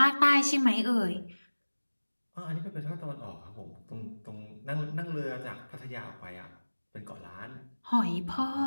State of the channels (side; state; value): both; inverted; correlation -1.00